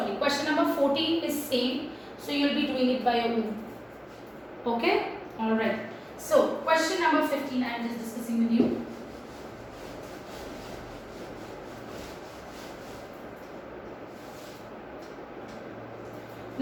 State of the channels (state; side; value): identical; both; correlation 1.00